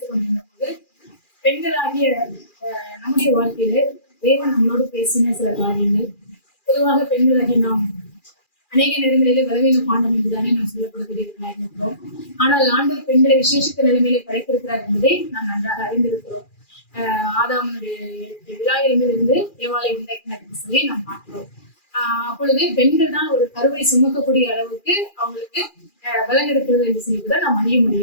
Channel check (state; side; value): late; right; 2.4 ms